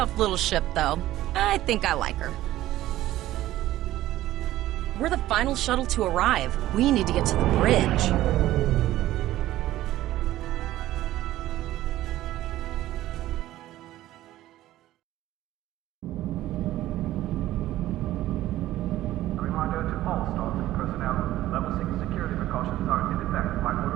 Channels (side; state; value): left; quieter; 14.8 dB